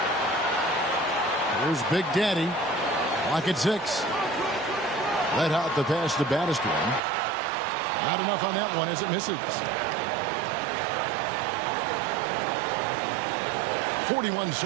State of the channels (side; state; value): left; drops out; at 7.0 s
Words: Here's Big Daddy. Lock at 6. Red Hot the pass to baddest one. Not enough on that one as it misses. 41